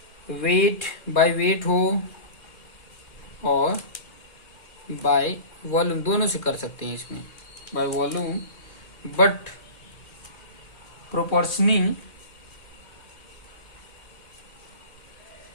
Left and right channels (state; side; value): late; right; 2.4 ms